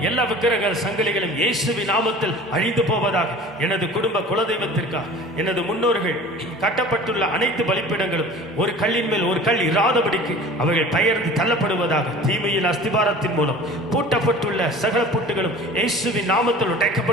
எல்லா விக்கிரக சங்கிலிகளும் இயேசுவின் நாமத்தில் அழிந்து போவதாக. எனது குடும்ப குலதெய்வத்திற்காக எனது முன்னோர்கள் கட்டப்பட்டுள்ள அனைத்து பலிப்பீடங்களும் ஒரு கல்லின் மேல் ஒரு கல் இராதபடிக்கு அவைகள் பெயர்ந்து தள்ளப்படுவதாக. தீமையின் அஸ்திபாரத்தின் மூலம் பூட்டப்பட்டுள்ள சகல பூட்டுகளும் இயேசுவின் நாமத்தில்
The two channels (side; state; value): both; normal; correlation 0.42